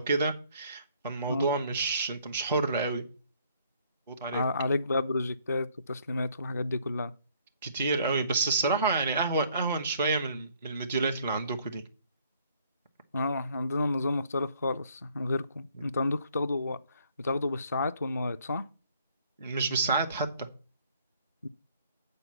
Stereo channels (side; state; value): both; inverted; correlation -0.63